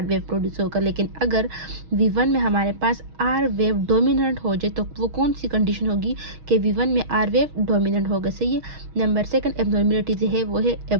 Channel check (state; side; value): late; left; 6.3 ms